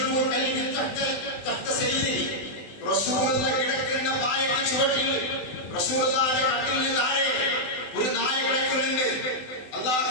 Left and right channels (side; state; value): right; late; 20 ms